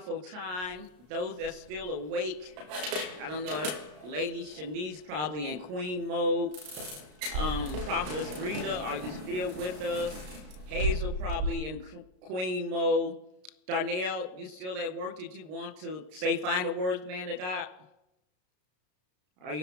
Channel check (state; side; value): late; left; 33 ms